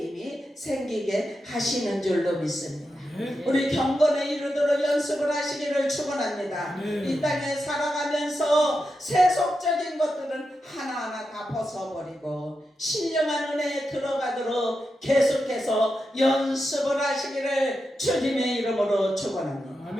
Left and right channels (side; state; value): both; normal; correlation 0.88